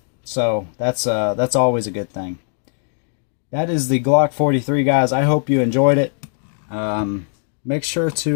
So that's always a good thing. That is the Glock 43, guys. I hope you enjoyed it. Make sure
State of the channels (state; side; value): silent; right; digital silence